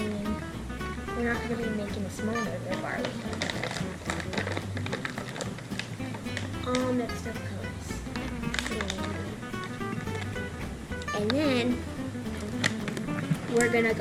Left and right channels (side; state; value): both; identical; correlation 1.00